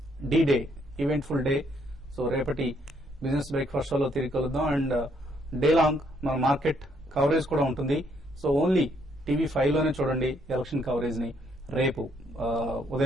day event full day. So రేపటి బిజినెస్ బ్రేక్ఫాస్ట్ షోలో తిరిగి కలుద్దాం. అండ్ డే లాంగ్ మన మార్కెట్ కవరేజ్ కూడా ఉంటుంది. సో ఓన్లీ TV5 లోనే చూడండి ఎలక్షన్ కవరేజ్ ని రేపు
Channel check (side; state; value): both; normal; correlation 0.70